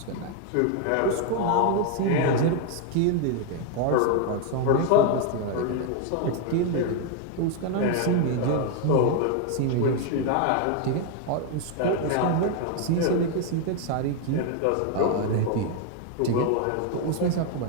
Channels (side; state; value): both; different; correlation 0.01